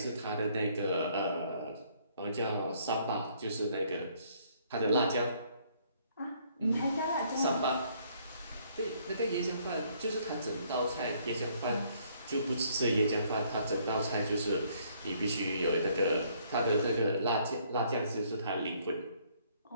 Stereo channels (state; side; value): inverted; both; correlation -0.65